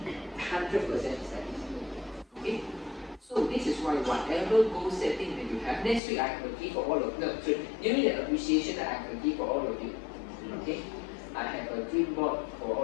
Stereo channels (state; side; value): drops out; right; at 6.0 s